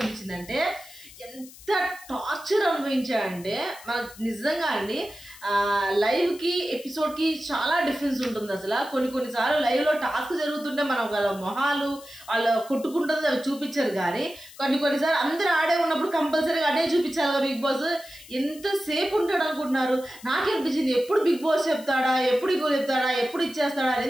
ఎంత టార్చర్ అనుభవించాడంటే మనకు నిజంగా అండి. లైవ్కి ఎపిసోడ్కి చాలా డిఫరెన్స్ ఉంటుంది అసలు. కొన్నిసార్లు లైవ్లో టాస్క్ జరుగుతుంటే మనం వాళ్ళ మొహాలు వాళ్ళు కొట్టుకుంటుంది అవి చూపించారు, కానీ కొన్నిసార్లు అందరూ ఆడే ఉన్నప్పుడు కంపల్సరీగా అడే చూపించాలి కదా బిగ్ బాస్. ఎంతసేపు ఉంటాడు అనుకుంటున్నారు? నాకేనిపించింది ఎప్పుడు బిగ్ బాస్ చెప్తాడా, ఎప్పుడు ఇంకో చెప్తాడా, ఎప్పుడు ఇచ్చేస్తాడా అని.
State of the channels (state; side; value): noise; left; hiss, 20 dB below the sound